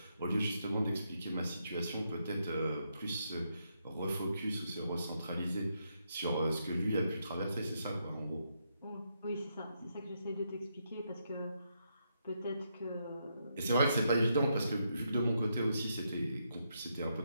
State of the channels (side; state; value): both; inverted; correlation -0.80